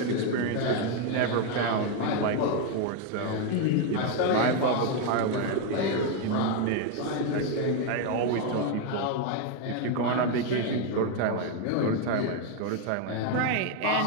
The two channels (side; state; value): both; different; correlation 0.01